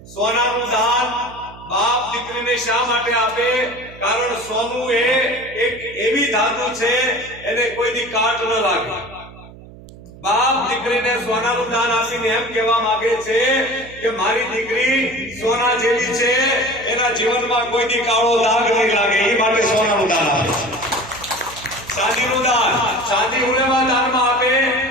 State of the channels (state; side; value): noise; right; hum, 19 dB below the sound